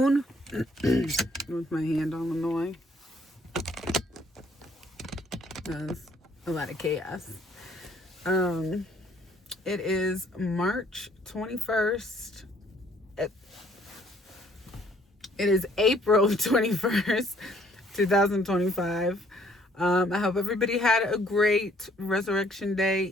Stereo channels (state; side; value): normal; both; correlation 0.62